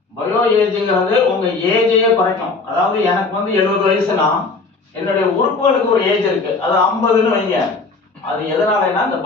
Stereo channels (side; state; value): right; quieter; 4.0 dB